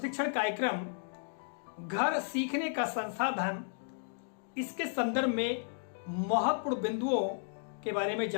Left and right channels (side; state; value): right; silent; digital silence